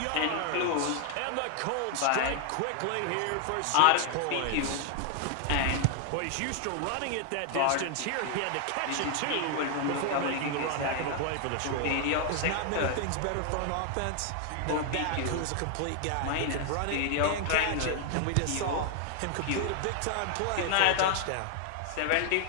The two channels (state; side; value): different; both; correlation 0.00